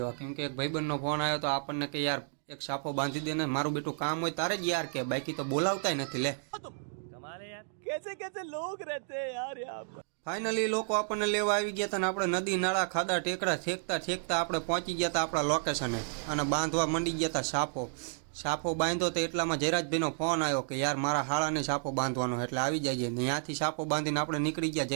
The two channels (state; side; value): silent; left; digital silence